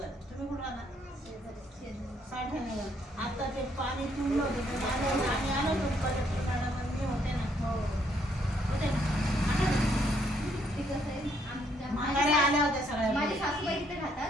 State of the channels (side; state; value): both; normal; correlation 0.70